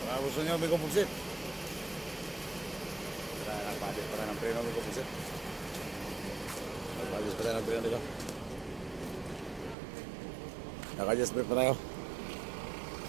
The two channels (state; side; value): drops out; left; at 9.8 s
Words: Gusto nyo may kumuksit. Nagpadis pa rin ng preno. May kumuksit. Nagpadis pa rin ng preno dito. Naka-adjust pa tayo.